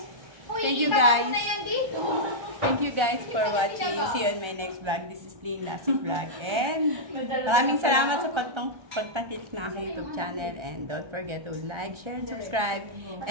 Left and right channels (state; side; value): late; left; 1.3 ms